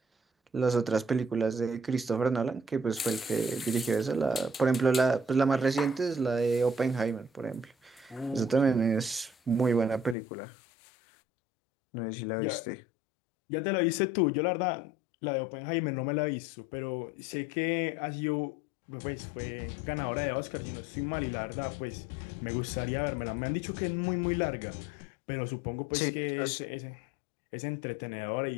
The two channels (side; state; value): right; drops out; at 10.2 s